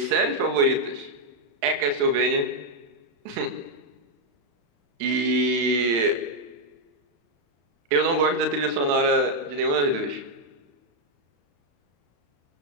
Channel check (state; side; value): late; left; 35 ms